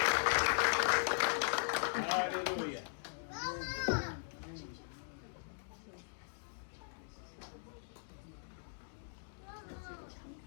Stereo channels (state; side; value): silent; right; digital silence